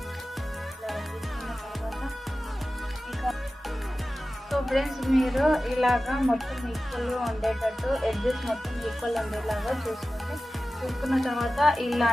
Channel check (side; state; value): both; normal; correlation 0.95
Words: సో ఫ్రెండ్స్, మీరు ఇలాగా మొత్తం ఈక్వల్గా ఉండేటట్టు ఎడ్జెస్ మొత్తం ఈక్వల్ ఉండేలాగా చూసుకోండి. చూసుకున్న తర్వాత